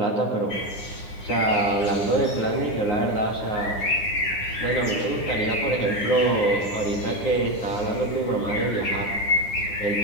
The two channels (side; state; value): right; late; 9.9 ms